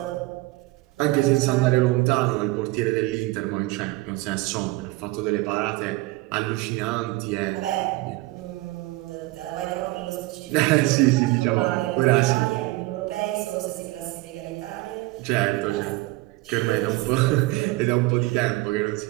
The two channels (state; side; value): quieter; left; 20.6 dB